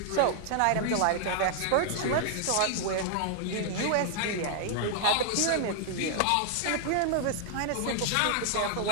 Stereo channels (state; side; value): different; both; correlation 0.00